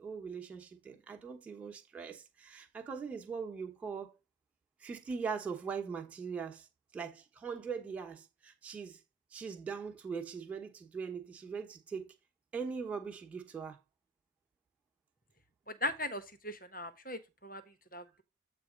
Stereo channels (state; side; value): quieter; left; 3.6 dB